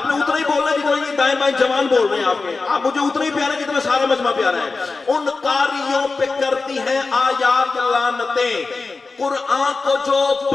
उतना ही बोलना जितना ये दाएं बाएं जवान बोल रहे हैं आपके। आप मुझे उतना ही प्यारे जितना सारा मजमा प्यारा है। उन कारियों पे करती है आयात लानतें, कुरान को जो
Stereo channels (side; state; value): right; quieter; 4.0 dB